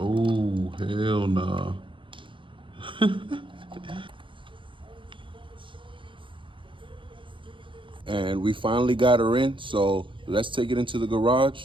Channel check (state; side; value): late; left; 0.24 ms